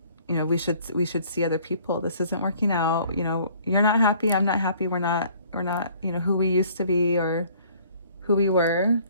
we should see other people. This isn't working out. You're not happy. I'm not happy. We're not, who we used to be or who we were.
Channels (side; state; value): both; inverted; correlation -0.56